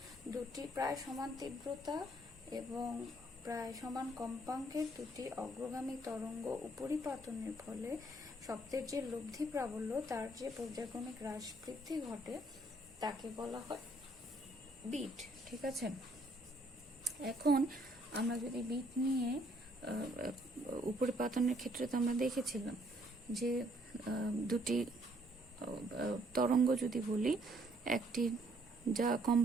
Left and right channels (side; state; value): both; normal; correlation 0.66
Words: দুটি প্রায় সমান তীব্রতা এবং প্রায় সমান কম্পাঙ্কের দুটি অগ্রগামী তরঙ্গ উপরিপাতনের ফলে শব্দের যে লব্ধি প্রাবল্য তার যে পর্যায়ক্রমিক হ্রাস বৃদ্ধি ঘটে তাকে বলা হয় বিট, ঠিক আছে। এখন আমরা যদি বিট নিয়ে উপরিপাতনের ক্ষেত্রে তো আমরা দেখেছিলাম যে দুটি তরঙ্গ যদি বলি, একটি যা